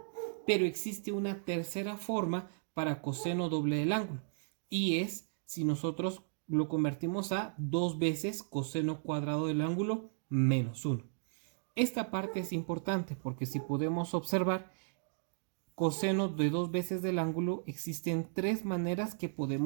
Pero existe una tercera forma para coseno doble del ángulo, y es si nosotros lo convertimos a 2 veces coseno cuadrado del ángulo menos 1. Esta parte es importante porque si podemos observar, coseno de 2 veces del ángulo, existen 3 maneras que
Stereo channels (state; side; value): silent; left; digital silence